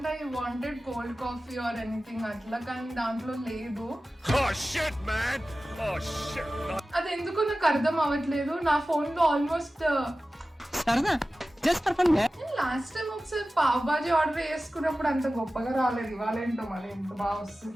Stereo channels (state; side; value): normal; both; correlation 0.95